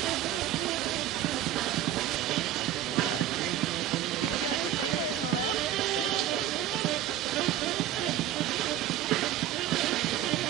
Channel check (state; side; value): quieter; left; 11.7 dB